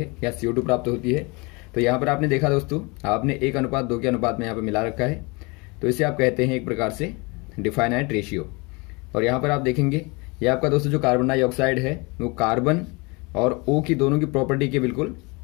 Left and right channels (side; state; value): right; quieter; 27.6 dB